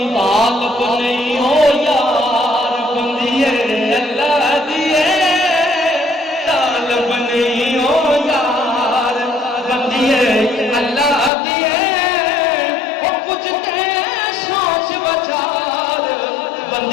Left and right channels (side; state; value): right; drops out; at 11.3 s